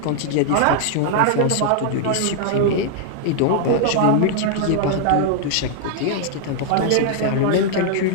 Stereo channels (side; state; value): both; different; correlation -0.01